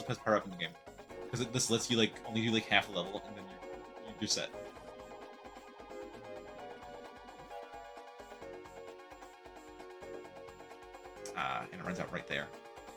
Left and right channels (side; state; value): both; identical; correlation 1.00